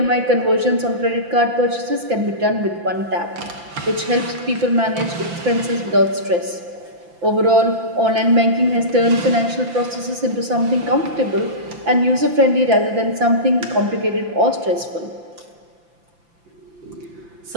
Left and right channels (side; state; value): left; late; 5.9 ms